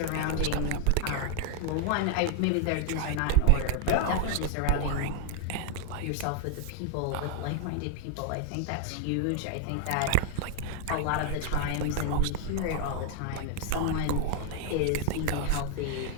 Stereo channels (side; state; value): both; different; correlation 0.00